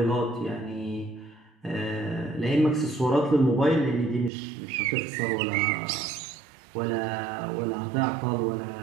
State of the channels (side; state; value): left; drops out; at 4.3 s